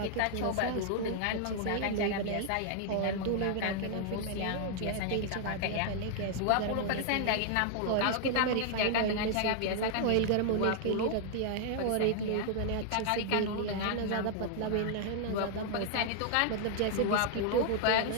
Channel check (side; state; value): both; different; correlation 0.00